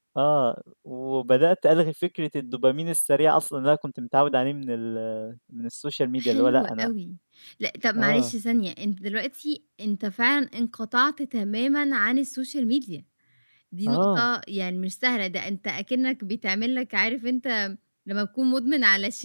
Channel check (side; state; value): both; inverted; correlation -1.00